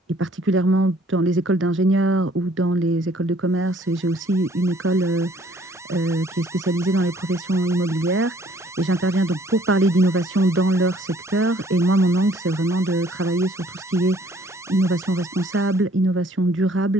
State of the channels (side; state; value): both; normal; correlation 0.59